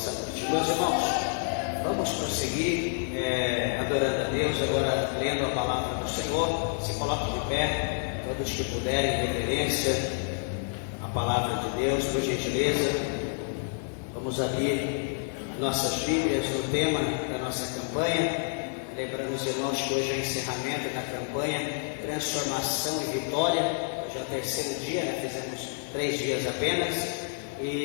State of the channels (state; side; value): silent; right; 59 dB below the other